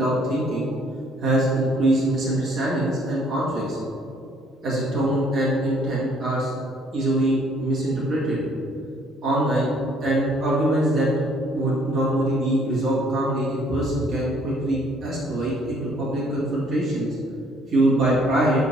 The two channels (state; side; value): normal; both; correlation 0.62